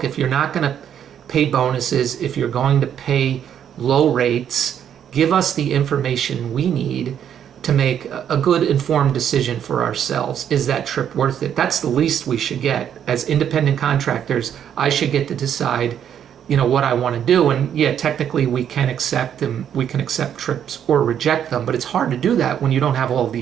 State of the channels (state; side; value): quieter; left; 9.2 dB